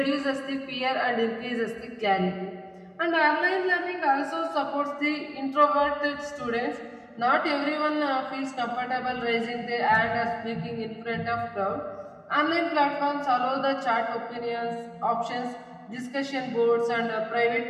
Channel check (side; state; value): both; identical; correlation 1.00